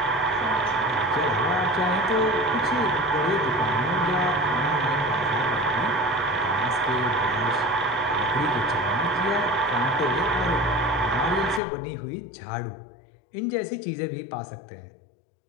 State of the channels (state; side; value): drops out; right; at 11.6 s